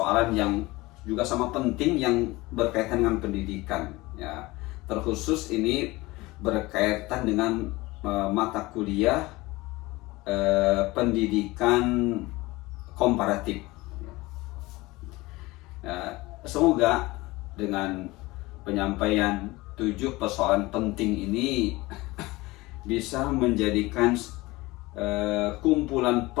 yang juga sama penting yang berkaitan dengan pendidikan ya. Terkhusus ini berkaitan dengan mata kuliah pendidikan komparatif. Semoga dengan penyampaian 7 persoalan penting ini bisa menjadikan kumpulan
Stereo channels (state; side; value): quieter; right; 21.0 dB